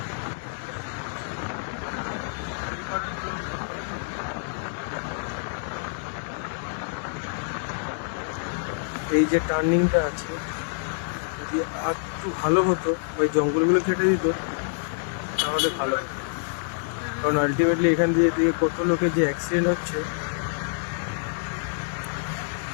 এই যে টার্নিংটা আছে, যদি আর একটু ভালো হতো, ওই জঙ্গলগুলো কেটে দিত তাহলে ভালো হতো। কারণ আলটিমেটলি এখান দিয়ে কত লোকের যে অ্যাক্সিডেন্ট হচ্ছে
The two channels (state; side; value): silent; right; digital silence